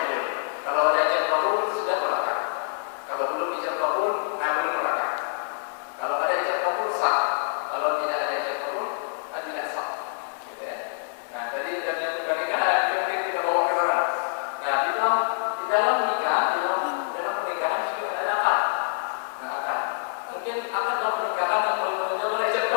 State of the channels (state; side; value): silent; right; digital silence